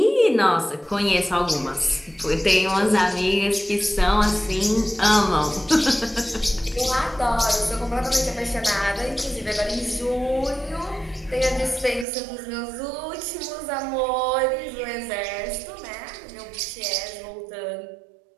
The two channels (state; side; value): drops out; left; at 12.1 s